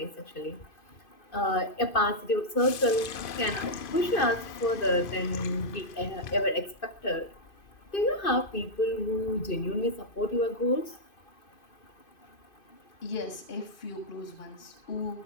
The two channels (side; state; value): right; late; 2.5 ms